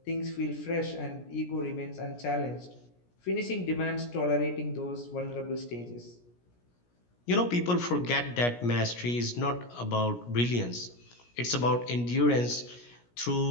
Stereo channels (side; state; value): right; late; 17 ms